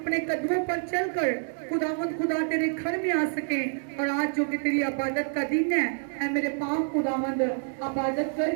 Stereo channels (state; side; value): silent; left; 60 dB below the other